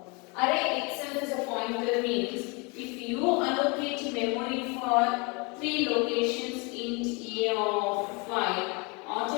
Array itself is a pointer means if you allocate memory for 3 locations int a of 5,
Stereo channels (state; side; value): quieter; right; 30.0 dB